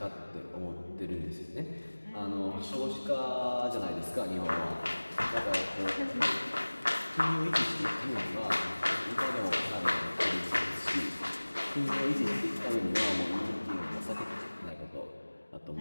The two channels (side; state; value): both; inverted; correlation -1.00